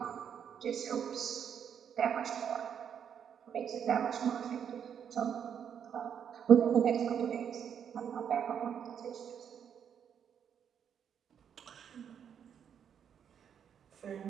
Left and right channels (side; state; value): left; quieter; 8.2 dB